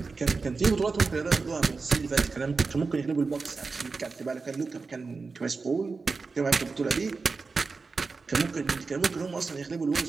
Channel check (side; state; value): left; quieter; 4.3 dB